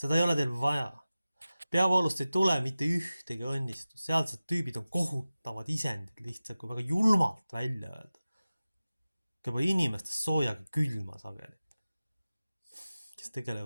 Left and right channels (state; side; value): inverted; both; correlation -0.96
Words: ei ole teil vaja. Peavoolust ei tule mitte ühtegi õnnistust. Sealsed tüübid on kohutavad isendid lihtsalt, kui väga julmalt välja öelda. Keba inimestest soojaga külma sageli. Kes